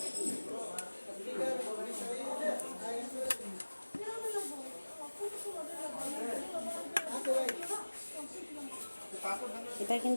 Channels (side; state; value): both; inverted; correlation -1.00